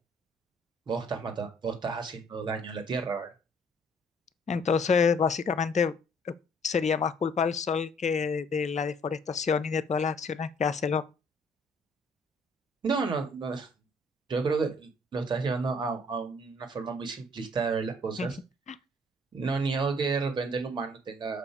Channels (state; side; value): normal; both; correlation 0.60